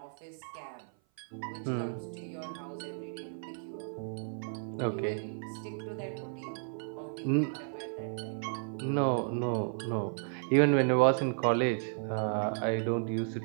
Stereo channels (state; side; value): silent; left; 55 dB below the other